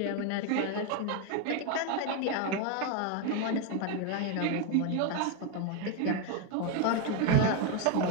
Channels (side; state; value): both; different; correlation 0.02